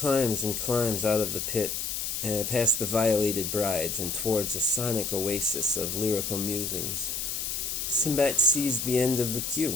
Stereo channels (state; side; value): noise; left; hiss, 3 dB below the sound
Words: and climbs out of the pit, past the violated brides and towards a sonic oasis of lyrical musings. Sinbad sees the end of the